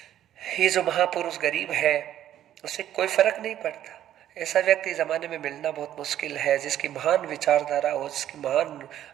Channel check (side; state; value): left; quieter; 11.6 dB